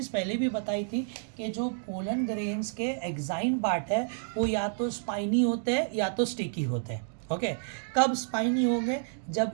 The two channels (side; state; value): left; silent; digital silence